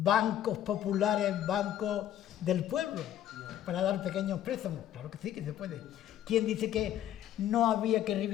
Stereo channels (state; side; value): quieter; right; 11.3 dB